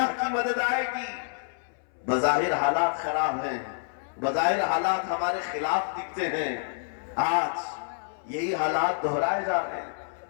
کی مدد آئے گی۔ بظاہر حالات خراب ہیں، بظاہر حالات ہمارے خلاف دکھتے ہیں، آج یہی حالات دہرائے جا رہے ہیں۔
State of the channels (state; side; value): silent; right; 59 dB below the other